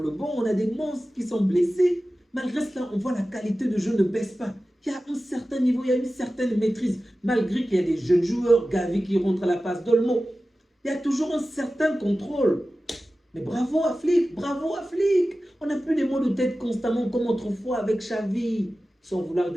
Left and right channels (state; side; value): normal; both; correlation 0.95